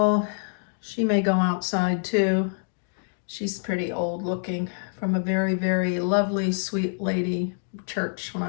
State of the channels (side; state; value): right; silent; 61 dB below the other